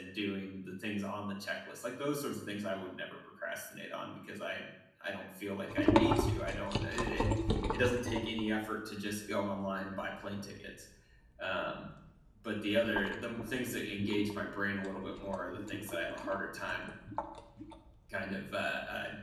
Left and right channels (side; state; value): both; identical; correlation 1.00